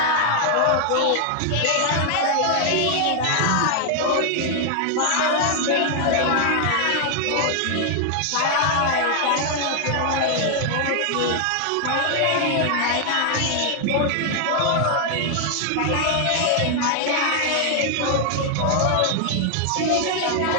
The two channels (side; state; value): both; different; correlation 0.00